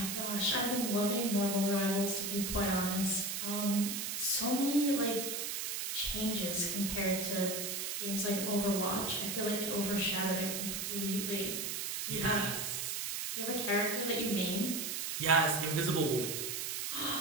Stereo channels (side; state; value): right; noise; hiss, 2 dB below the sound